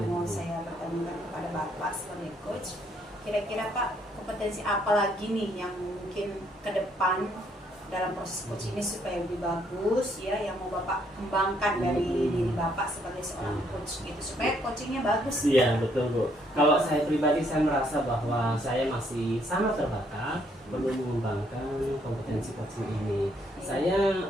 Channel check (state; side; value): normal; both; correlation 0.69